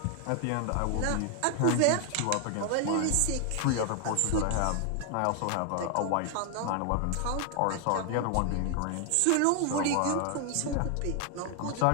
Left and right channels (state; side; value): different; both; correlation 0.00